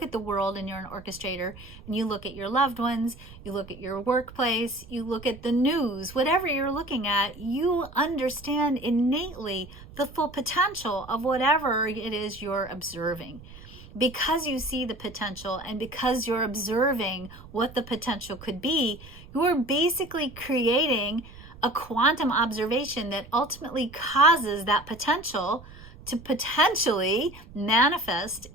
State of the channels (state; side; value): noise; right; rumble, 18 dB below the sound